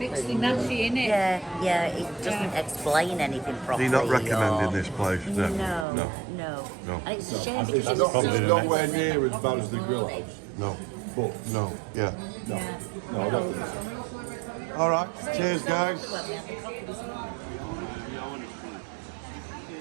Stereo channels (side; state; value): left; drops out; at 5.9 s